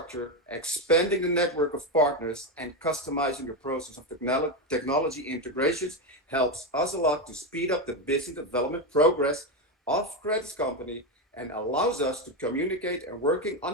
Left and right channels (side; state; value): both; normal; correlation 0.11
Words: expanding the network of partners, and customizing the process of technology integrations helps us a lot to speed up the business development progress of Credit's company and allows us to communicate and working